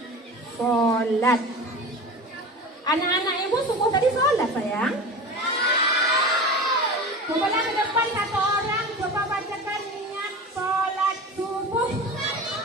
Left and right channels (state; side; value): normal; both; correlation 0.32